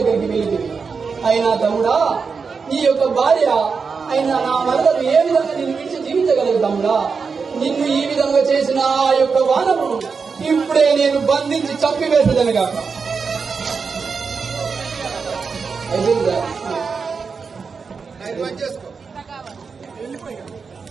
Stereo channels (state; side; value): quieter; left; 5.3 dB